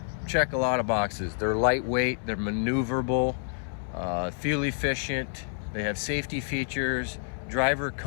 check a lot of boxes. They're lightweight, they're maneuverable, fuel efficient, they have safety features, driver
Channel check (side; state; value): right; silent; 59 dB below the other